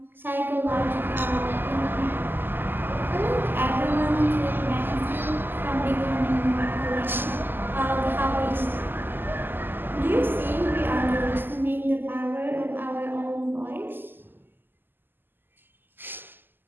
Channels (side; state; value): left; late; 0.094 ms